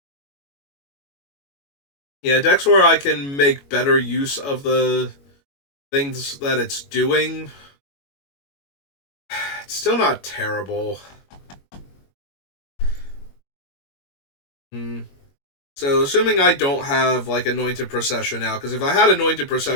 Yeah, decks where I can make better use of the things that it's doing. It's still not terrible. So, assuming I don't have, like, Anointed Procession out, because if I had Anointed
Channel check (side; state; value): right; late; 21 ms